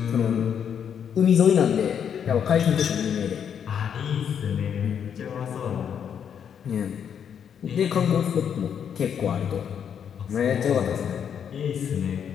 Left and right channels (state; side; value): quieter; right; 8.1 dB